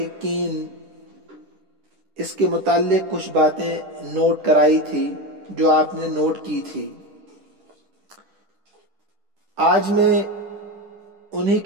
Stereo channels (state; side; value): late; left; 10 ms